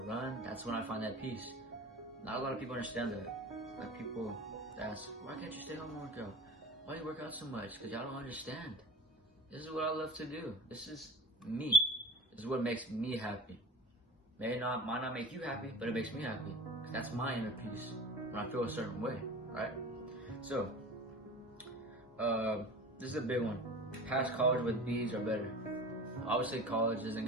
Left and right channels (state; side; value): normal; both; correlation 0.38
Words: run, that's when I find that peace. Not a lot of people understand that. Like people ask, why can't you stay home and work out? Why do you work out so much? Because y'all don't understand. This is what I love to do. This is me. This is what makes me happy. Might not make you happy, but it makes me happy. Because that's my inner peace when I feel a certain way, right? So, this is a big one. Pass college with B's are better. Obviously, college isn't